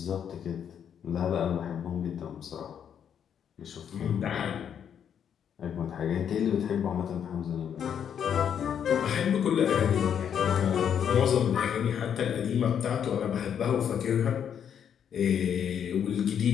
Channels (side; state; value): right; quieter; 8.5 dB